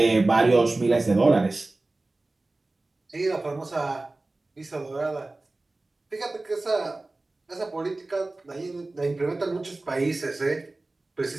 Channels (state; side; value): quieter; left; 3.0 dB